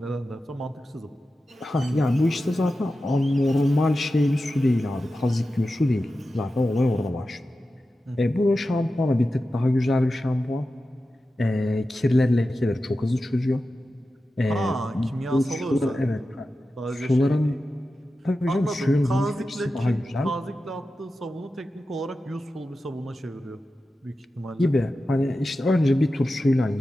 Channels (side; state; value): both; normal; correlation 0.92